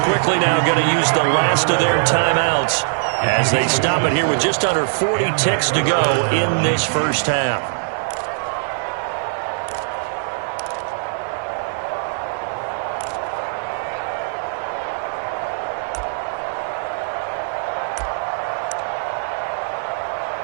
quickly now going to use the last of their timeouts as they stop it here with just under 40 ticks to go in this first half.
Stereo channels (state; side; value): silent; left; 58 dB below the other